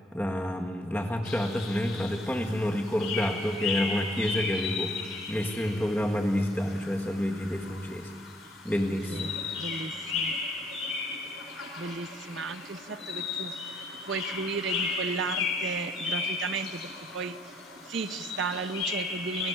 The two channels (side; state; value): both; normal; correlation 0.65